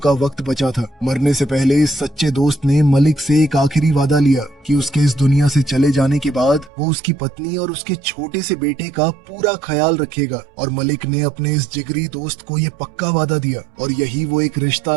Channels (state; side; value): drops out; left; at 6.7 s